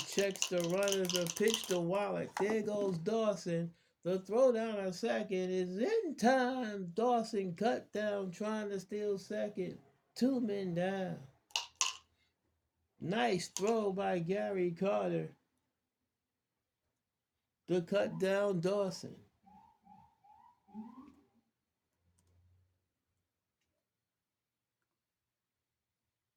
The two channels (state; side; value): identical; both; correlation 1.00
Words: checks the runners, the pitch to Wallach. There goes Dawson. The throw down a second is in time. Dawson cut down trying to steal second. 2 men down. Nice throw by Gary Carter to cut down Dawson.